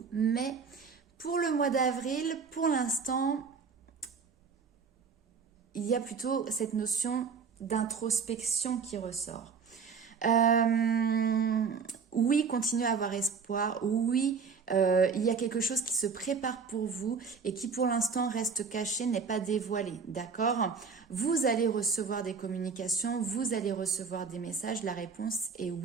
Mais pour le mois d'avril, pour l'instant, il y a plutôt cette notion d'introspection qui ressort. Oui, continuez à avoir espoir. Oui, il y a quelque chose qui se prépare pour vous et qui pour l'instant reste caché, n'est pas dévoilé. D'accord? Vous allez recevoir des communications, vous allez recevoir des messages. La réponse est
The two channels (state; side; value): quieter; left; 5.5 dB